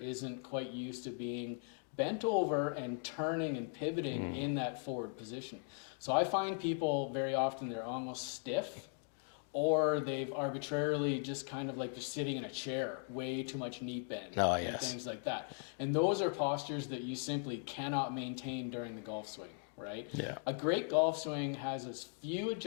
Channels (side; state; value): right; silent; 52 dB below the other